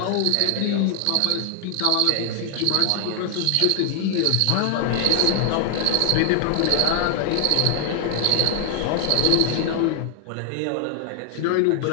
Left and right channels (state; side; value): different; both; correlation 0.00